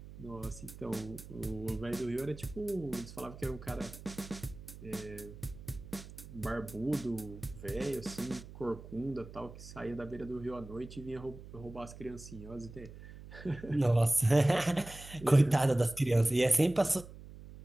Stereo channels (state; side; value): noise; right; hum, 15 dB below the sound